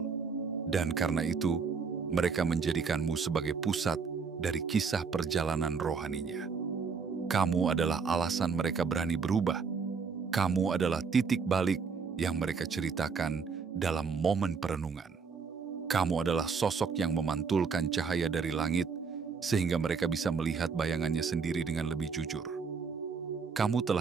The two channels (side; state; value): left; quieter; 5.5 dB